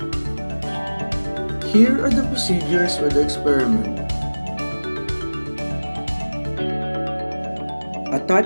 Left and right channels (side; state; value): both; inverted; correlation -1.00